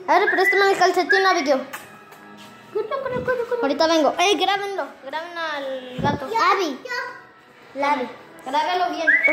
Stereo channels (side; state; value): both; identical; correlation 1.00